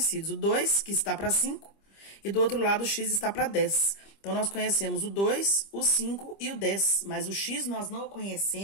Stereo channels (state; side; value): late; right; 25 ms